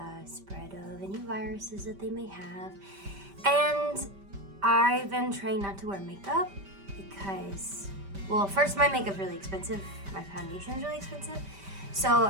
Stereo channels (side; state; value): left; late; 5.1 ms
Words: spread of any viruses that they may have. And I've been trying not to wear makeup because, well, first, my makeup's really expensive, my foundation's really expensive, so